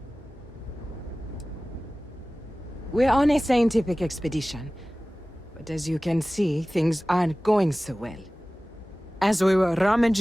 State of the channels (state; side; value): normal; both; correlation 0.97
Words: We're on a scientific expedition, but as you can see, things aren't going so well. As we were